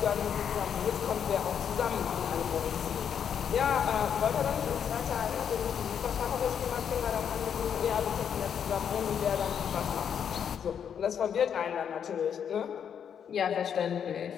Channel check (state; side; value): quieter; right; 8.1 dB